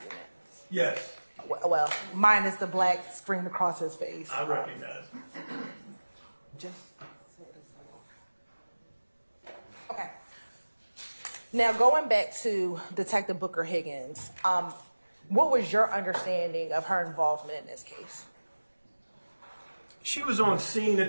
Yes, Well, minus the black screen across his face. I recognize. Just okay. Now going back to Detective Booker Higgins, what was your understanding of her involvement in this case? She was on scene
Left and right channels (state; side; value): inverted; both; correlation -1.00